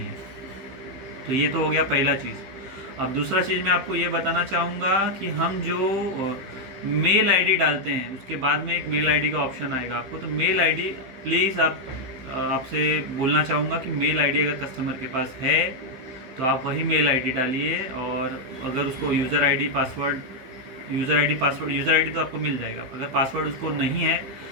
तो ये तो हो गया पहला चीज़। अब दूसरा चीज़ मैं आपको ये बताना चाहूँगा कि हम जो मेल आईडी डालते हैं उसके बाद में एक मेल आईडी का ऑप्शन आएगा आपको। तो मेल आईडी प्लीज़ आपसे बोलना चाहूँगा कि मेल आईडी अगर कस्टमर के पास है तो आप वही मेल आईडी डालिए, और अगर उसको user ID password user ID तो आपको मिल जाएगा। अगर पासवर्ड उसको नहीं है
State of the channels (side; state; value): left; late; 15 ms